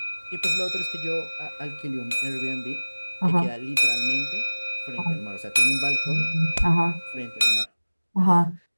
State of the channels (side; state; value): both; inverted; correlation -1.00